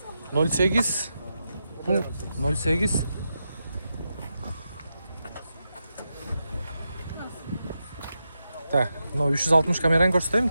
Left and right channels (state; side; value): inverted; both; correlation -0.87